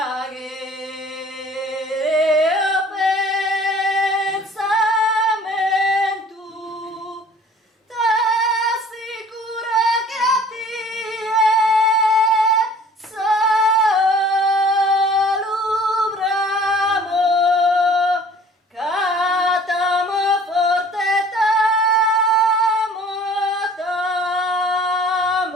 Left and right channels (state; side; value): normal; both; correlation 0.50